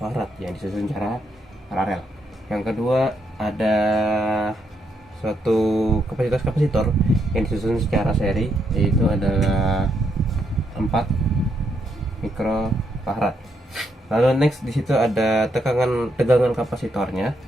yang disusun secara paralel. Yang kedua ada suatu kapasitas kapasitor yang disusun secara seri, yaitu adalah 4 mikrofarad. Lalu next di situ ada tegangan kapasitornya,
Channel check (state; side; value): normal; both; correlation 0.77